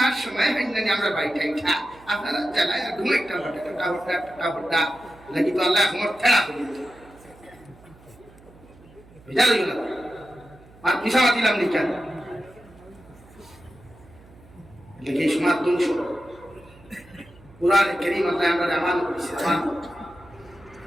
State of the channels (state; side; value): noise; right; hum, 24 dB below the sound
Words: আর সময় হয় না আমরা বাড়িটা ইঠা আপনারা জায়গায় আর ঘুম একটা হটা নাকি তো আল্লাহ আমার ঠেলা করে দিত বুঝা লইল না আর পিছামা দিলাম নি কেন দেখি সমাজ ধ্বংস কোরআনে কারীম আল্লাহ আমরা আমান করেছি আমান